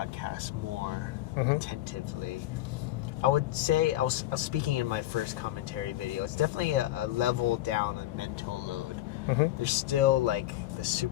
more attentively. I would say, I was speaking in my first commentary video, it's definitely a level down on mental load. Mm-hmm. There's still like the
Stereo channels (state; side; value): quieter; right; 14.9 dB